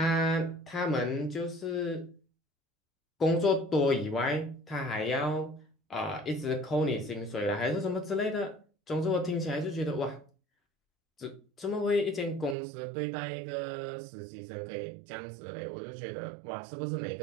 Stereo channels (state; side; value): drops out; left; at 12.6 s